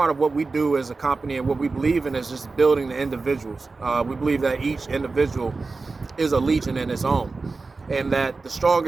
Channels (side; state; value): left; quieter; 3.9 dB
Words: of what we do as a company and what we believe in is just building the individuals. We believe that each individual is a legion in its own, and that the